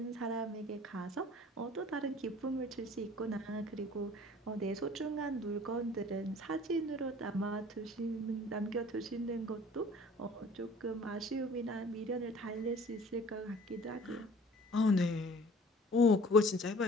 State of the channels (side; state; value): both; normal; correlation 0.49